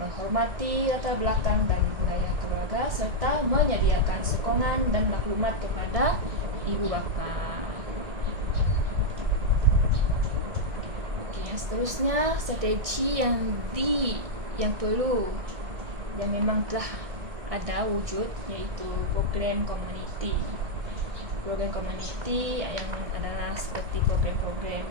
menghormati latar belakang dan budaya keluarga serta menyediakan sokongan dan maklumat kepada ibu bapa. Yang seterusnya, strategi yang perlu, yang memang telah ada wujud, iaitu program komuniti. Program komuniti yang adalah seperti program-program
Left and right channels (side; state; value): left; late; 1.8 ms